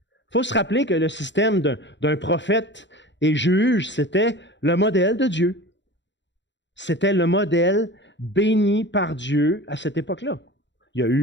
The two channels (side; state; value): right; late; 0.52 ms